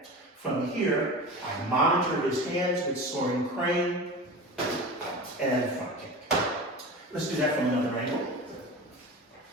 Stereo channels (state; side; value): normal; both; correlation 0.31